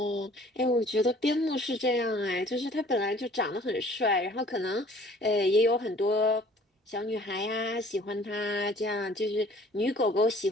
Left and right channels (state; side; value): normal; both; correlation 0.53